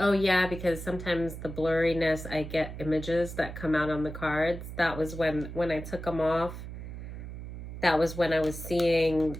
yeah, because sometimes the blurriness, I get images that come out on the cards. That was when I took them off. That was when I was seeing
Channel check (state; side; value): noise; right; hum, 9 dB below the sound